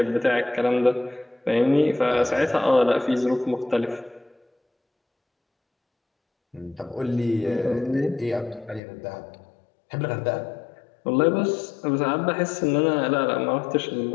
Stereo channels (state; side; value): drops out; right; at 8.8 s